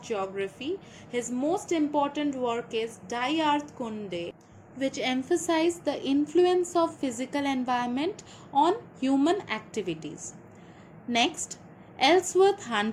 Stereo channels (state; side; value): identical; both; correlation 1.00